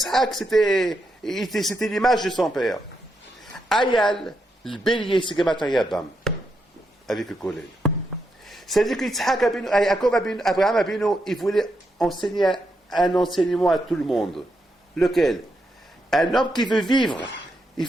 c'était l'image de son père. Ayal, le bélier, c'est Gematria Bam, avec le collègue. C'est-à-dire que Yitzhak Abinu, Abraham Abinu, il voulait enseigner un enseignement à tout le monde. Lequel? Un homme qui veut vivre, il ne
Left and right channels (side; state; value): both; normal; correlation 0.82